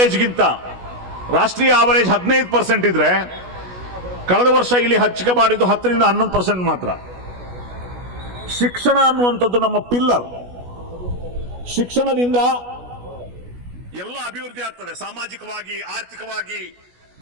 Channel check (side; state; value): left; late; 16 ms